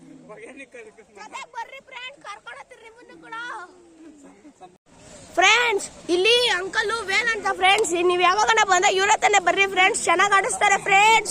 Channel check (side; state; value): both; identical; correlation 1.00